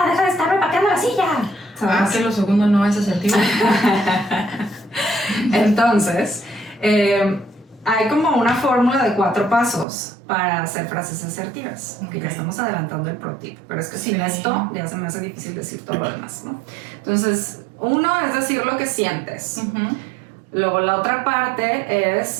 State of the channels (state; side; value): drops out; left; at 9.9 s